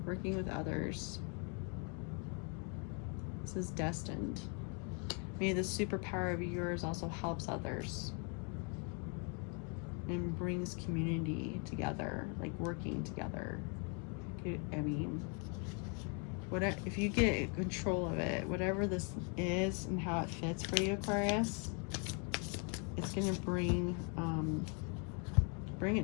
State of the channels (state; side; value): quieter; right; 37.3 dB